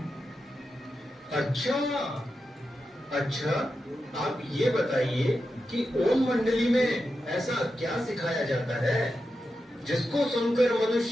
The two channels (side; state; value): both; normal; correlation 0.89